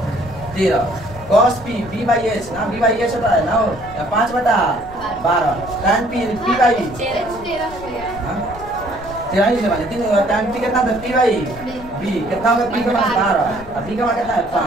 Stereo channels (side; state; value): left; noise; rumble, 16 dB below the sound